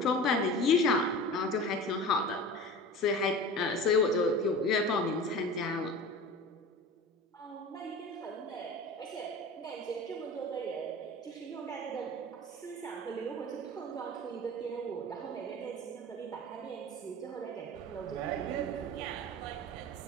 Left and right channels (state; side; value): normal; both; correlation 0.35